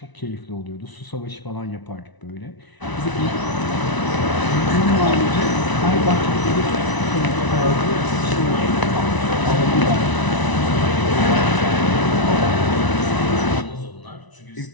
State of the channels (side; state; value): right; late; 1.0 ms